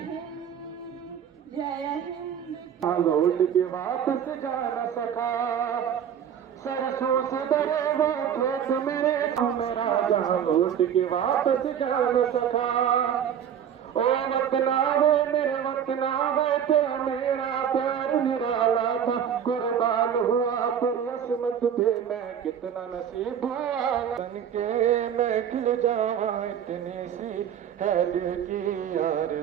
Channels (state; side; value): quieter; left; 8.7 dB